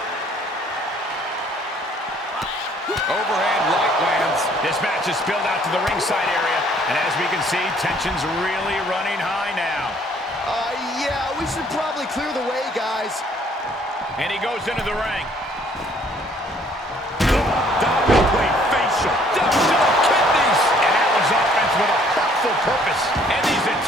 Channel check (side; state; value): both; normal; correlation 0.61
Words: Overhand right lands. This match is spilled out to the ringside area, and as we can see, tension's really running high now. Yeah, we should probably clear the way, guys. And he goes into the ring. Diamond plate facial. Down to the kidneys. And that was offense with a hurtful purpose. And these